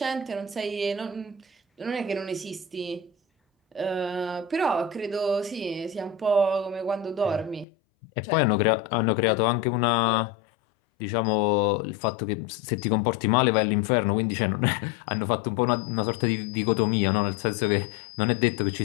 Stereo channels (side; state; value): right; drops out; at 7.7 s